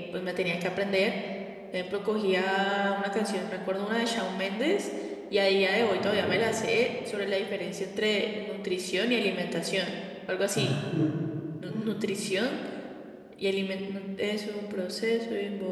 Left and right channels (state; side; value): identical; both; correlation 1.00